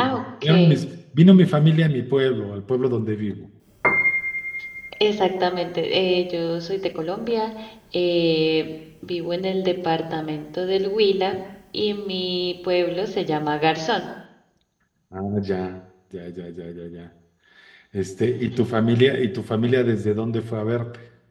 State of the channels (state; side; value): identical; both; correlation 1.00